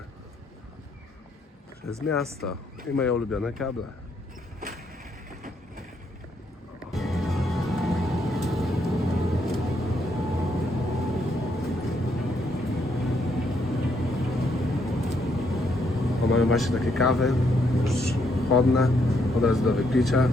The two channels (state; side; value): normal; both; correlation 0.74